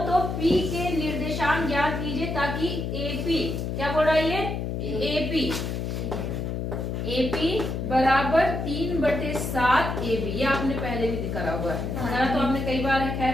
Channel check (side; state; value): left; noise; hum, 3 dB below the sound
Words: तो p के निर्देशांक ज्ञात कीजिए ताकि AP, क्या बोल रहा है ये? AP बराबर 3/7 AB, ये आपने पहले भी दिखा हुआ है, तो आपने कई बार रखा